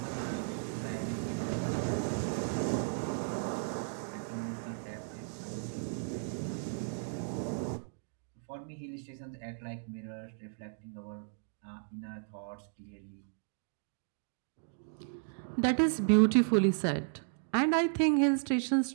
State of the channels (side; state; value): left; silent; digital silence